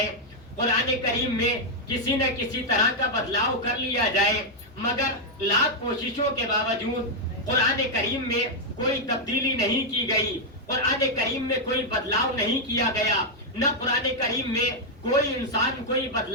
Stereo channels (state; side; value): normal; both; correlation -0.02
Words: قرآن کریم میں کسی نہ کسی طرح کا بدلاؤ کر لیا جائے، مگر لاکھ کوششوں کے باوجود قرآن کریم میں کوئی تبدیلی نہیں کی گئی، قرآن کریم میں کوئی بدلاؤ نہیں کیا گیا، نہ قرآن کریم میں کوئی انسان کوئی